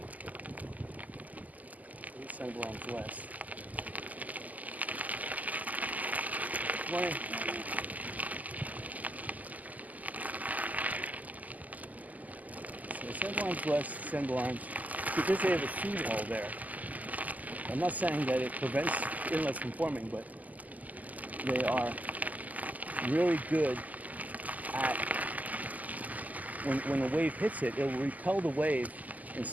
Sanibel Island West. Morning. So Sanibel Island West, Sanibel Island, because they have a seawall there. I'm not saying that it prevents inlets from forming, but they are really good at, when the wave hits it, it will repel the wave in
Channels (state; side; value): late; left; 0.079 ms